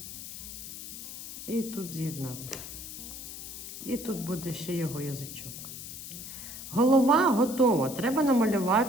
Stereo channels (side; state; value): left; noise; hiss, 10 dB below the sound